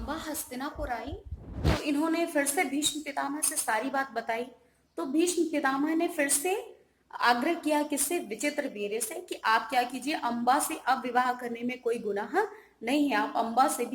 हस्तिनापुर आई तो इन्होंने फिर से भीष्म पितामह से सारी बात बताई। तो भीष्म पितामह ने फिर से आग्रह किया किससे, विचित्र वीर्य से, कि आप क्या कीजिए, अम्बा से अब विवाह करने में कोई गुनाह नहीं है, आप अम्बा से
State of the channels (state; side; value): identical; both; correlation 1.00